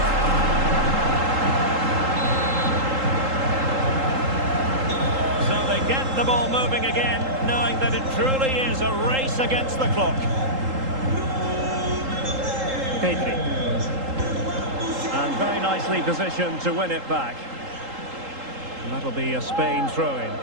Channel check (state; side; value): late; left; 3.8 ms